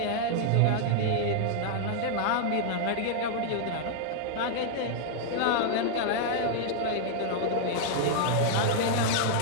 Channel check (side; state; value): both; different; correlation -0.01